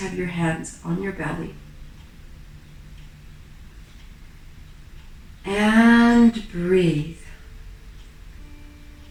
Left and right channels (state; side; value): identical; both; correlation 1.00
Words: your hands on your belly. And breathe.